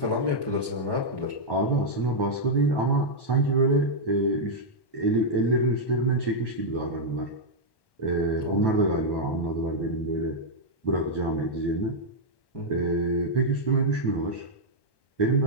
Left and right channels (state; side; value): late; right; 1.1 ms